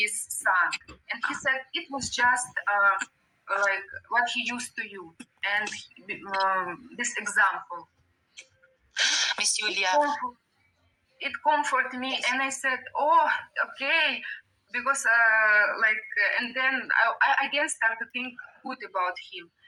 son, and he said it was just like what he used to you, and this example. Miss Yulia, it comforted me, yes. And I said, "Oh, okay," because and then I again started to think good about him.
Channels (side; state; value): both; identical; correlation 1.00